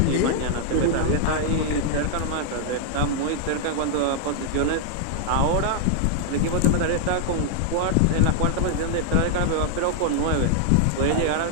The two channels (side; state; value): both; different; correlation -0.01